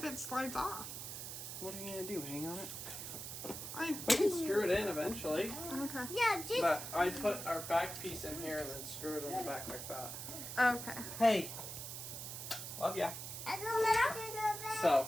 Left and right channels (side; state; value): right; noise; hiss, 7 dB below the sound